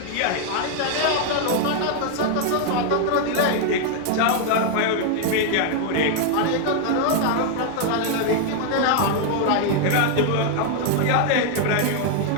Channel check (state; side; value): different; both; correlation 0.00